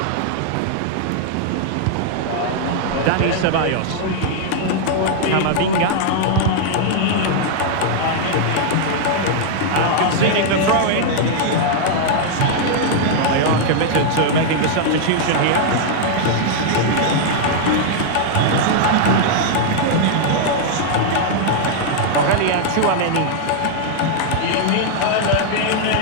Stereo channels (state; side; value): different; both; correlation -0.01